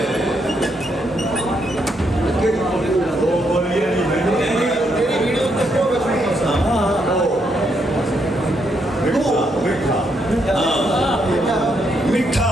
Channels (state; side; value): normal; both; correlation 0.77